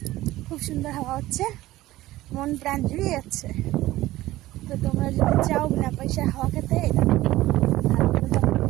খুব সুন্দর হাওয়া হচ্ছে, মন প্রাণ জুড়িয়ে যাচ্ছে। তো তোমরা যদি চাও বিনা পয়সায় হাওয়া খেতে,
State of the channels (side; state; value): left; quieter; 16.5 dB